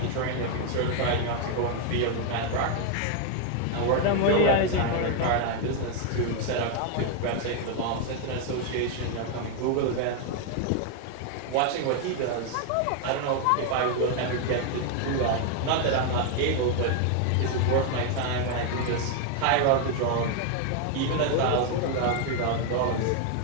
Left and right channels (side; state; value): both; different; correlation 0.00